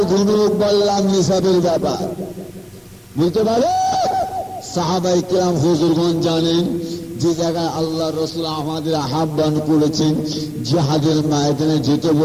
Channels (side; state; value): both; identical; correlation 1.00